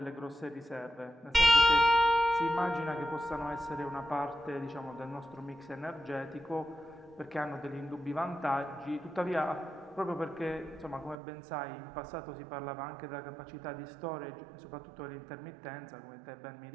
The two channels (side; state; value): left; drops out; at 11.2 s